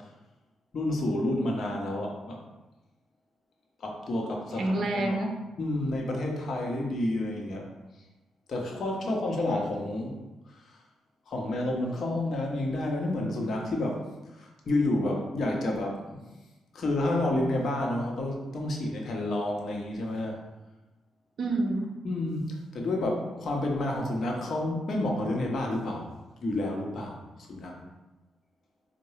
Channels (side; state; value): both; normal; correlation 0.81